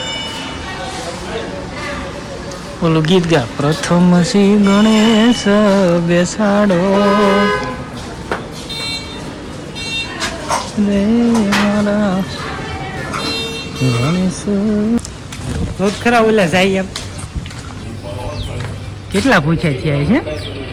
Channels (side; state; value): both; identical; correlation 1.00